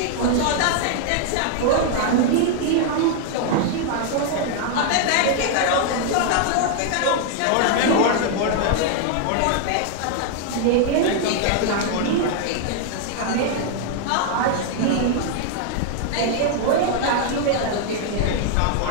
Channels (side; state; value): both; different; correlation 0.00